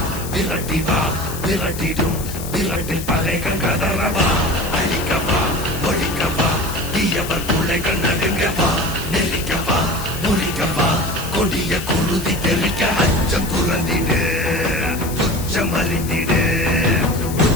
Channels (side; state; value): left; noise; hiss, 11 dB below the sound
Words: விரட்டி வா விரட்டிடும் விரட்டில் பகைகள் கதறவா அழிக்கவா ஒழிக்கவா தீயவர் பிள்ளைகள் நடுங்கவா நெருக்கவா முறிக்கவா கொடிய குருதி தெளிக்க அச்சம் துறந்திடு துச்சம் அறிந்திடு